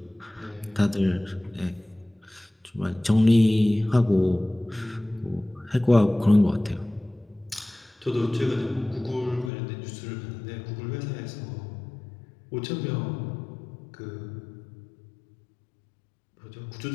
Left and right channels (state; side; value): drops out; right; at 9.5 s